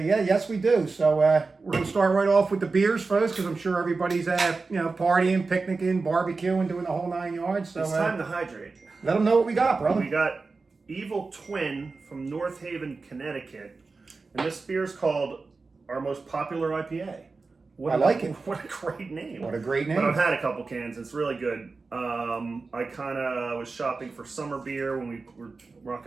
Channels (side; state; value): left; quieter; 4.1 dB